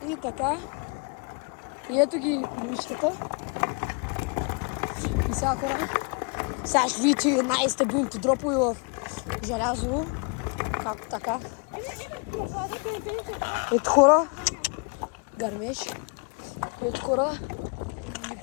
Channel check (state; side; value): quieter; right; 35.6 dB